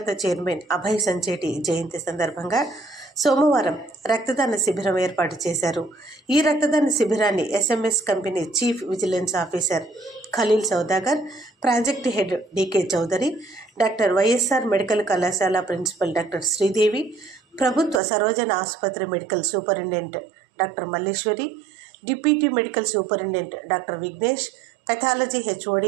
చైర్మన్ అభయ్ సంచేటి జయంతి సందర్భంగా సోమవారం రక్తదాన శిబిరం ఏర్పాటు చేశారు. ఈ రక్తదాన శిబిరాన్ని SMS company chief vigilance officer Khaleel Saudagar, project head DK Chaudhary, doctor YSR medical కళాశాల ప్రిన్సిపల్ డాక్టర్ శ్రీదేవి, ప్రభుత్వ సరోజన ఆసుపత్రి medical superintendent doctor Malleswari, deputy medical superintendent doctor Vignesh, pathology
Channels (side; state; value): left; drops out; at 18.0 s